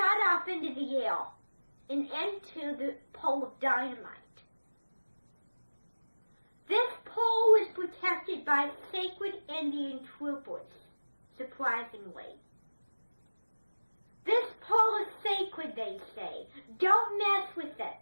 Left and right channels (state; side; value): inverted; both; correlation -1.00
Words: off into the air and into the pole of dynamite. This pole is protected by sacred Indian troopers, surprisingly. This pole is sacred, they say. Don't mess with